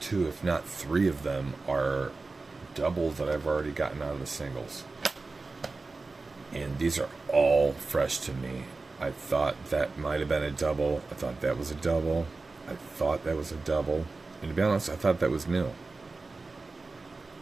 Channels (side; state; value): left; quieter; 3.7 dB